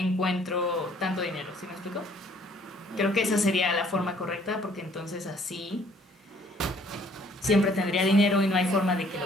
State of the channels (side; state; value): both; normal; correlation 0.60